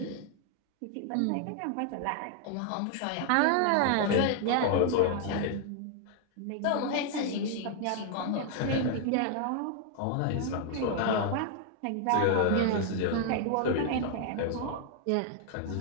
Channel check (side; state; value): both; different; correlation 0.00